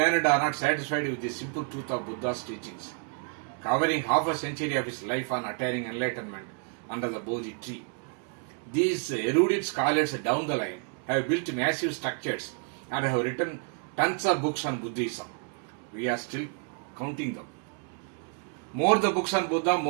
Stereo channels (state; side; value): quieter; left; 39.7 dB